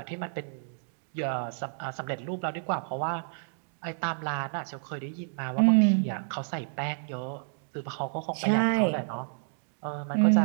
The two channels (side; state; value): left; silent; digital silence